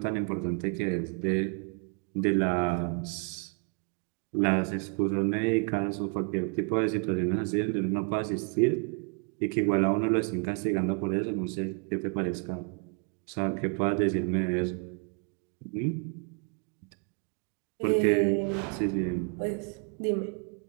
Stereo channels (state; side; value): quieter; left; 37.0 dB